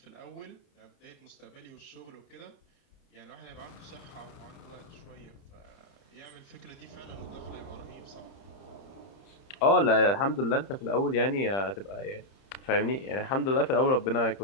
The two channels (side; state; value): right; late; 30 ms